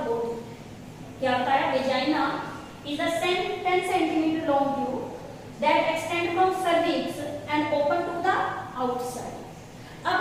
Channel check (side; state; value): both; identical; correlation 1.00